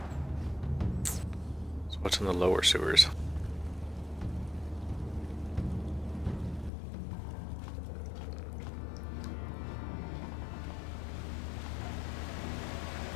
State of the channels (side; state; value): right; drops out; at 6.7 s